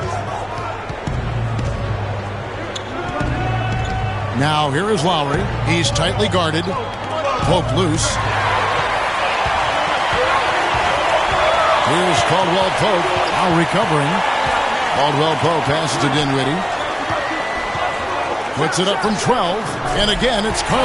Now here is Lowry. He's tightly guarded. Pope loose. Here's Caldwell Pope. Now recovering. Caldwell Pope passes to Dinwiddie. Puts it up from 12. And again, it's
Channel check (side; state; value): both; identical; correlation 1.00